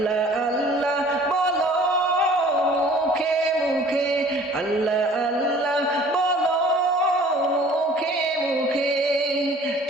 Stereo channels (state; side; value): normal; both; correlation 0.50